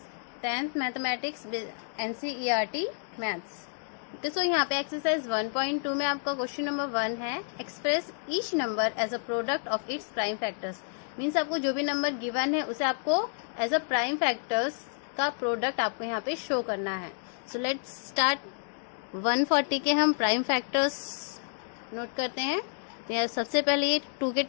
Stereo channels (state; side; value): silent; right; digital silence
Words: 10th mathematics NCERT maths. तो यहाँ पे exercise 1.2 में आपका question number 1 है, express each number as a product of its prime factors. Means आपको जो भी number given है उसे आपको एज अ प्राइम फैक्टर्स का प्रोडक्ट आपको यहाँ पे शो करना है। So let's start. 140 के हम प्राइम फैक्टर्स नोट करते हैं। तो यहाँ सबसे पहले ये 2 के